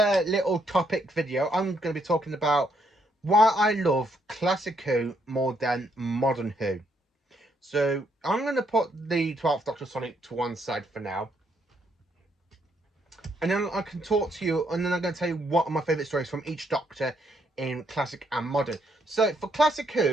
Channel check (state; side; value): normal; both; correlation 0.73